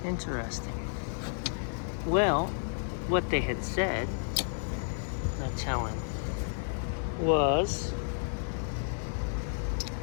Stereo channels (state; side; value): silent; right; digital silence